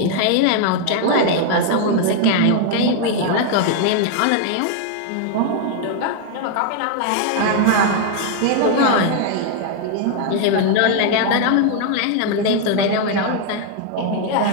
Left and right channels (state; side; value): different; both; correlation 0.00